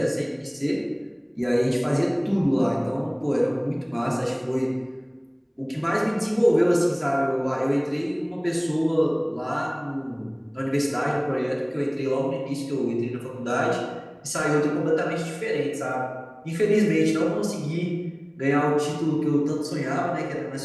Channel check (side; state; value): both; identical; correlation 1.00